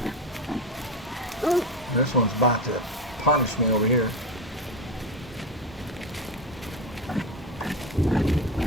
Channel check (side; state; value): both; normal; correlation 0.18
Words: This one's about to punish me over here.